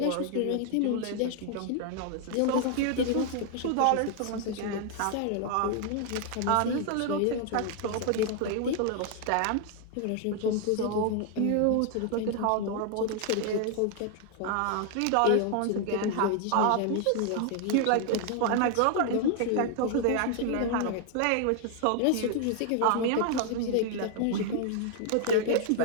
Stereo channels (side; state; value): both; different; correlation 0.00